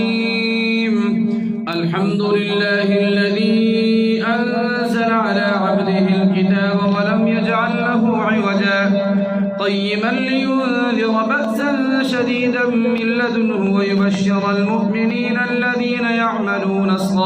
الحمد لله الذي أنزل على عبده الكتاب ولم يجعل له عوجا قيما لينذر بأسا شديدا من لدنه ويبشر المؤمنين الذين يعملون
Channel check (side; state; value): both; identical; correlation 1.00